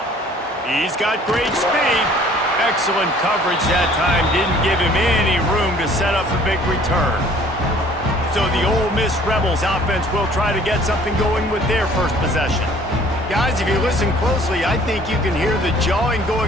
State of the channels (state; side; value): normal; both; correlation 0.54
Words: He's got great speed. Excellent coverage that time. Didn't give him any room to set up a big return. So the Ole Miss Rebels offense will try to get something going with their first possession. Guys, if you listen closely, I think you can hear the jawing